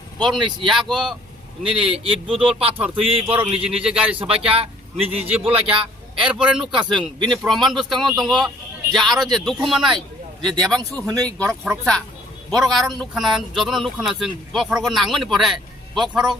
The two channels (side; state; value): both; normal; correlation 0.57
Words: बरं यागो निनि इट बुदल पाथर थुई बरं निजे गाड़ी सबाक्या निजे बोलाक्या एरपरे नुका जों बिनि प्रमाण बुस्थांगन दङ जे आरो जे दुखु मानाय जे देबांसु हनै गरक खरकसा बरक आरो नुखाना जतन नुखाना जों बखरगो नांगनि परे